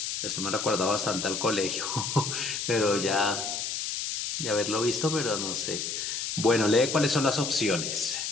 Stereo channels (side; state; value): left; noise; hiss, 3 dB below the sound